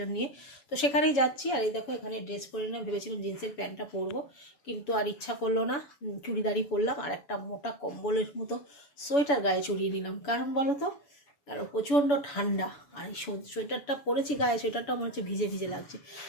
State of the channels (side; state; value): right; late; 7.0 ms